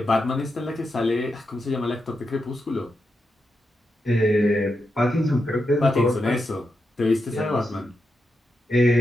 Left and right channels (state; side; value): normal; both; correlation 0.86